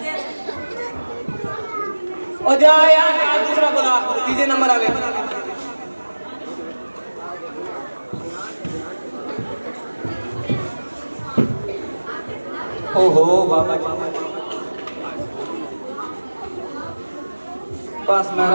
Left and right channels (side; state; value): both; inverted; correlation -1.00